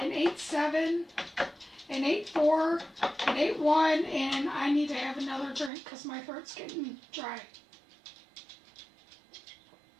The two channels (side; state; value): left; drops out; at 5.7 s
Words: 87, an 84, an 81, and I need to have another drink because my throat's getting dry.